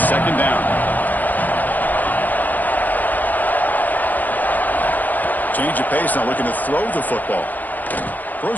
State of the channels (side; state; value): right; late; 0.085 ms